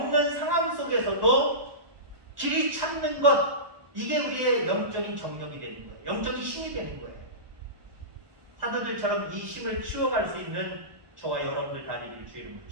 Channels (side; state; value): left; late; 1.2 ms